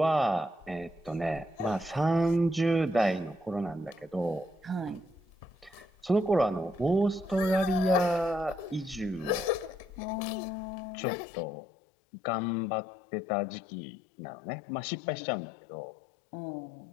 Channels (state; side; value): drops out; right; at 10.0 s